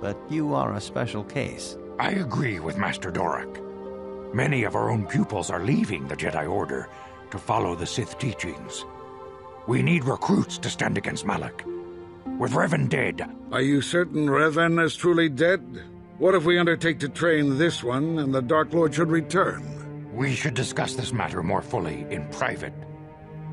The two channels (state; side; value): identical; both; correlation 1.00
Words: But you are a special case. I agree with Master Dorak. Many of our own pupils are leaving the Jedi Order to follow the Sith teachings. We need recruits to stand against Malak. With Revan dead... Are you certain Revan is truly dead? What if we undertake to train this one and the Dark Lord should return? We should discuss this matter more fully in private.